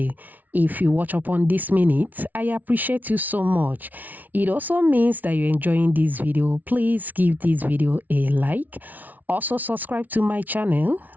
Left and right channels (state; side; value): late; left; 0.078 ms